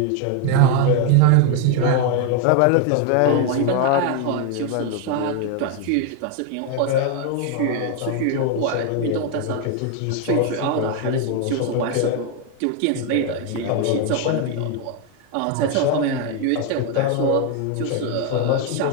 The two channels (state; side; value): different; both; correlation 0.01